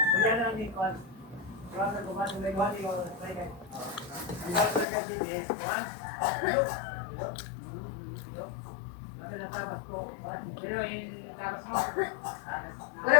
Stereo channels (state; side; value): drops out; right; at 4.9 s